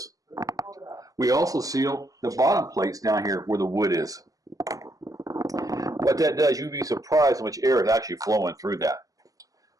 We also seal the bottom plates down here where the wood is. What that does, you'd be surprised how much air is actually flowing through that.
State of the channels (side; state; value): left; late; 0.17 ms